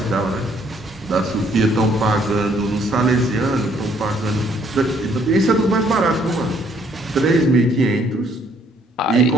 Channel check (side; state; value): both; normal; correlation 0.65